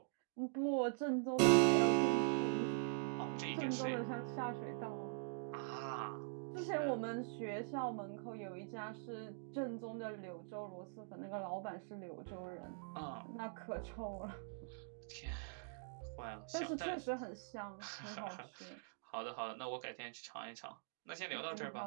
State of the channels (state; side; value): silent; left; digital silence